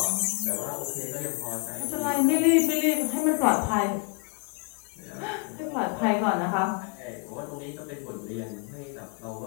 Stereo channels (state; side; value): quieter; right; 34.9 dB